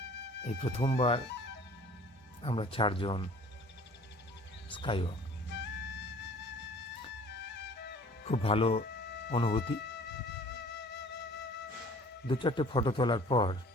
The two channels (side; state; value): both; normal; correlation 0.50